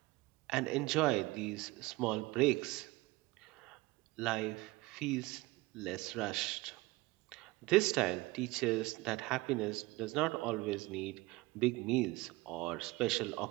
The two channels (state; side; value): quieter; left; 21.4 dB